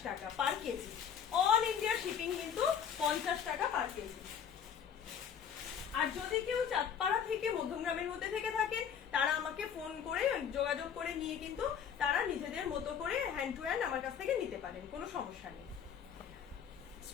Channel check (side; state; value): right; quieter; 7.9 dB